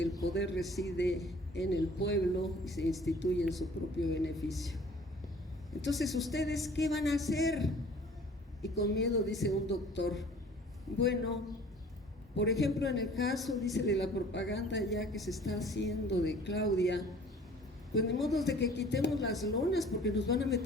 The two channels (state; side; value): normal; both; correlation 0.51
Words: el poder reside en el pueblo y se instituye en su propio beneficio. Entonces, ¿ustedes qué van a hacer? Y con miedo dice un doctor, bueno, por ejemplo, en el caso, dice, de la propaganda ya que se está haciendo de Claudia, pues ni modo de que quitemos las lonas porque nos van a